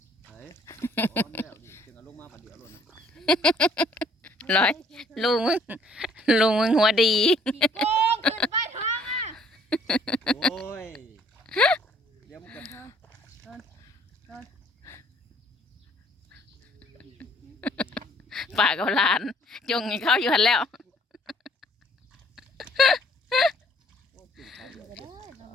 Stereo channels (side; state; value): both; normal; correlation 0.61